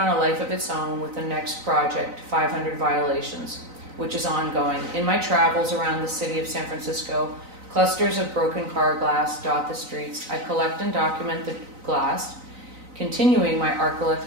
a life of its own with the next project, 500 Violations, which is ongoing. In my travels around the city of San Francisco, clusters of broken car glass dot the streets. I collect and document the glass, continuing my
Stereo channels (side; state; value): left; late; 3.9 ms